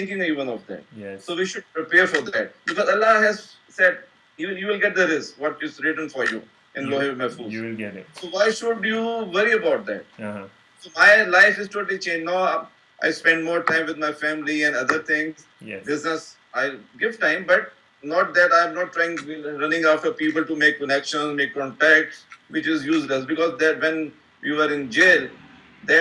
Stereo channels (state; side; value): identical; both; correlation 1.00